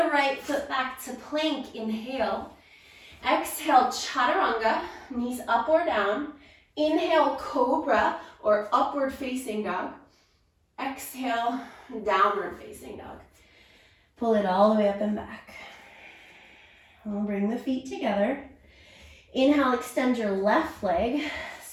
right foot back to plank, inhale. Exhale, Chaturanga, knees up or down. Inhale, Cobra or Upward Facing Dog. Exhale, Downward Facing Dog. Pull it all the way up and back. We'll bring the feet together. Inhale, extend your left leg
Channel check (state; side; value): identical; both; correlation 1.00